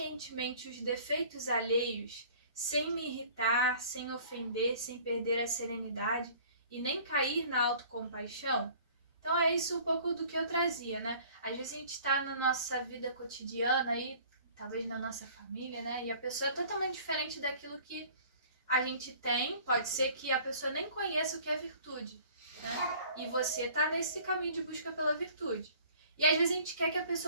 os defeitos alheios, sem me irritar, sem ofender, sem perder a serenidade e nem cair na autocompaixão? Então é isso um pouco do que eu trazia, né? Às vezes a gente está na nossa vida cotidiana aí, talvez na nossa família, né? E a pessoa é totalmente diferente daquilo que a gente tem. Pode ser que a pessoa nem conheça o que é virtude, né? E você está nesse caminho de busca pela virtude. E às vezes a gente quer que a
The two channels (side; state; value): both; inverted; correlation -0.50